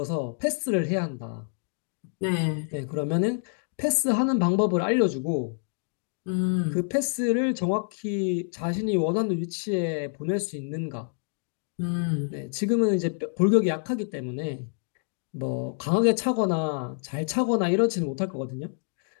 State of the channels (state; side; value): silent; right; 60 dB below the other